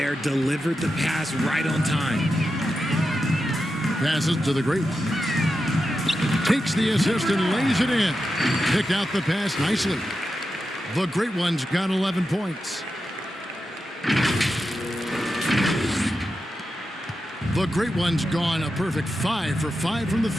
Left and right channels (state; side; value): normal; both; correlation 0.89